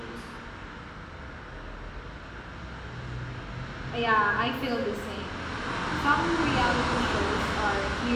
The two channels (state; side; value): identical; both; correlation 1.00